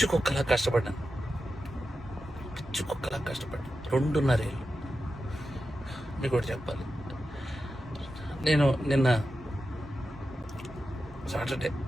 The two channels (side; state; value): both; normal; correlation 0.91